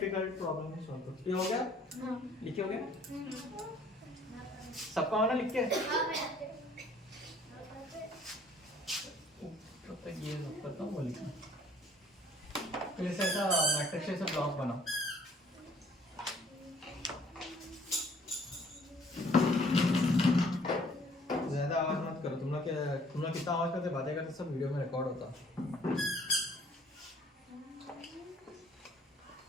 प्रॉब्लम है, सॉल्व करो। ये हो गया, लिखे हो गया सबका होना लिख के, तब तक ये करता हूँ वो लिखना, फिर ऐसा मैट्रिक्स से ब्लॉक बनाओ। ज्यादा आवाज मत करो, तुम लोग कितना आवाज करते बातें करते सब वीडियो में रिकॉर्ड होता।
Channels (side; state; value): both; normal; correlation 0.59